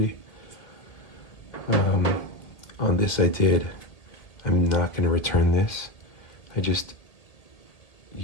On this I did. I'm not going to return this. I just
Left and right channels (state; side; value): late; right; 1.8 ms